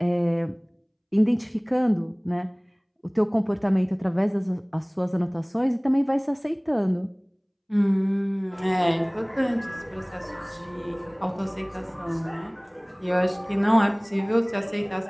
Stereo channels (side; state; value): both; identical; correlation 1.00